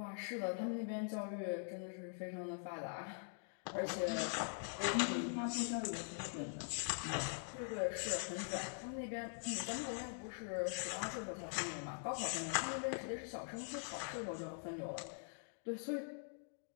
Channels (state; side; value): silent; right; digital silence